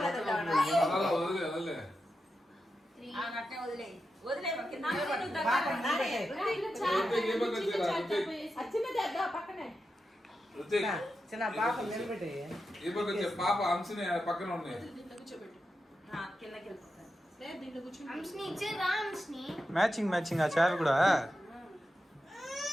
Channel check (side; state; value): both; normal; correlation 0.89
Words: చిన్న పాప నిలబెట్టి పాప అంశని పక్కన ఉన్నాయి మ్యాచింగ్ మ్యాచింగ్ ఆ చారు కూడా